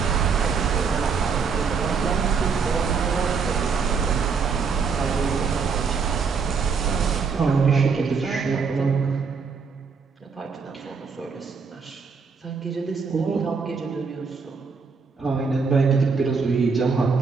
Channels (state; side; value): quieter; left; 5.4 dB